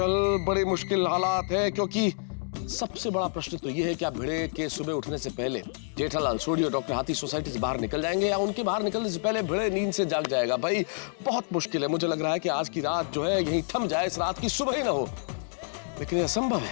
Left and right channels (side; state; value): right; silent; digital silence